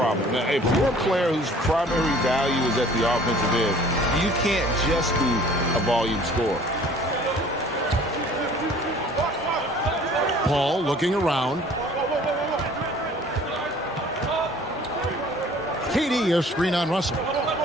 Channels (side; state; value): both; normal; correlation 0.51